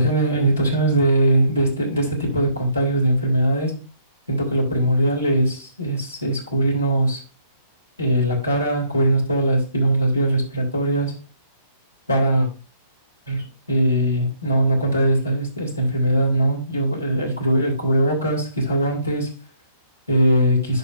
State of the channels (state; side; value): inverted; both; correlation -0.68